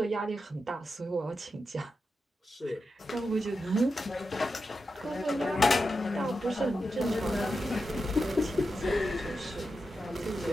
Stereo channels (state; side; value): normal; both; correlation 0.89